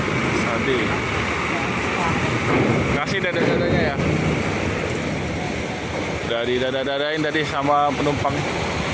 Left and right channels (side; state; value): both; identical; correlation 1.00